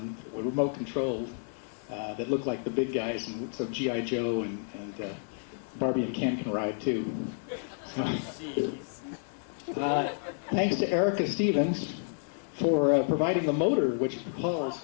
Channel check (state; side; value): silent; right; 58 dB below the other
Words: with remote controlled that look like the big guys, and so G.I. Joe and Barbie and Ken can ride too. So, thanks to Erica Stevens for providing the motor which